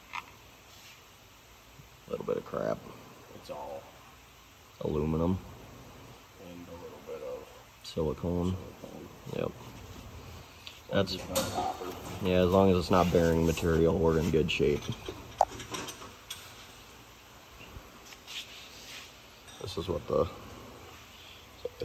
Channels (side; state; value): both; identical; correlation 1.00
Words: A little bit of crap. It's all Aluminum. and a little bit of Silicone. Yep. That's, it's not copper. yeah, as long as it's not bearing material, we're in good shape. This is what the